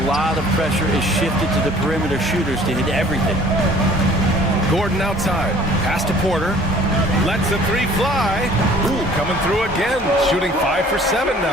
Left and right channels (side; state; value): both; normal; correlation 0.52